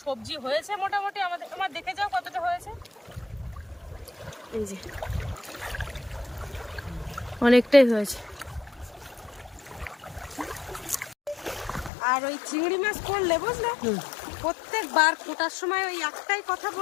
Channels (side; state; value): right; drops out; at 11.9 s